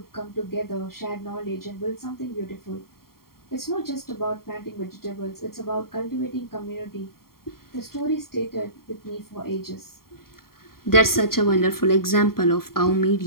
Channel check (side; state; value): right; late; 0.93 ms